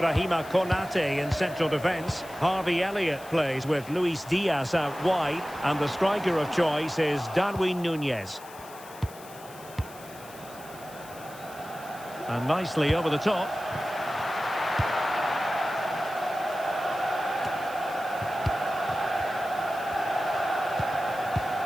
Konate in central defence. Harvey Elliott plays with Luis Diaz out wide. And the striker of choice is Darwin Núñez. And nicely over the top.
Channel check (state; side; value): noise; left; hiss, 19 dB below the sound